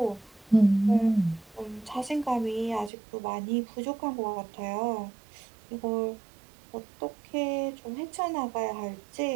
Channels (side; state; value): left; drops out; at 2.9 s